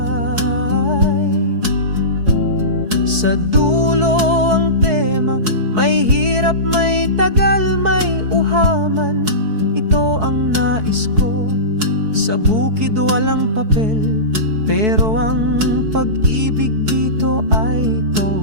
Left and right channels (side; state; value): left; late; 4.6 ms